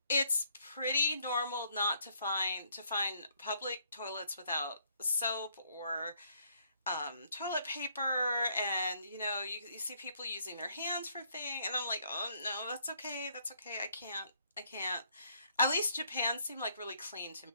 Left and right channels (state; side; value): inverted; both; correlation -0.68